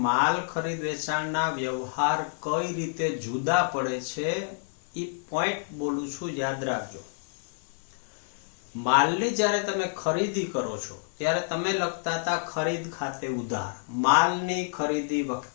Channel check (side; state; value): right; silent; digital silence